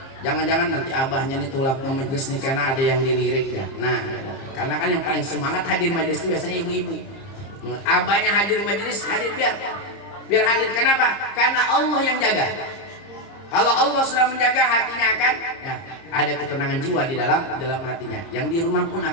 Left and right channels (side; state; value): right; late; 30 ms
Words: Jangan-jangan nanti abahnya nih tulap ke majelis nih karena ada yang dilirik ya. Nah, karena kan yang paling semangat hadir majelis itu biasanya ibu-ibu. Abahnya hadir majelis, hadir biar hadir. Kenapa? Karena Allah yang jaga. Kalau Allah sudah menjaga, hatinya akan ya, ada ketenangan jiwa di dalam hatinya. Yang di rumah pun